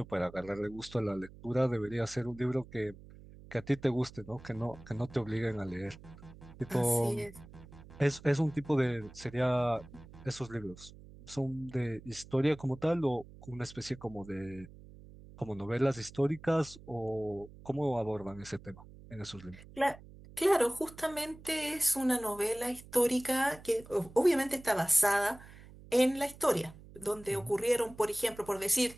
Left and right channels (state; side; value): noise; right; hum, 19 dB below the sound